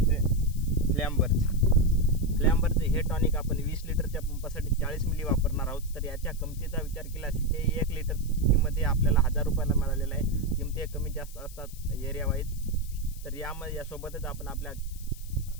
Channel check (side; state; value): left; noise; hiss, 19 dB below the sound